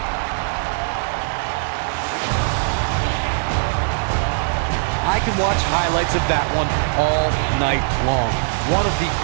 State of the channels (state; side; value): silent; left; digital silence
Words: I can watch highlights of that one all night long. One of the